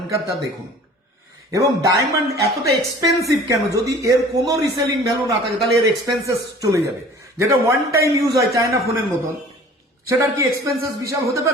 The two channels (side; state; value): both; normal; correlation 0.47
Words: তা দেখুন। এবং ডায়মন্ড এতটা এক্সপেন্সিভ কেন? যদি এর কোনো রিসেলিং ভ্যালু না থাকে তাহলে এর এক্সপেন্সেস চলে যাবে। যেটা ওয়ান টাইম ইউজ হয় চায়না ফোনের মতন, সেটার কি এক্সপেন্সেস বিশাল হতে